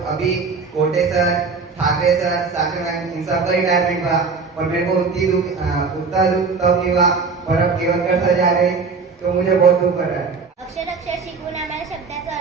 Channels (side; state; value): left; quieter; 4.8 dB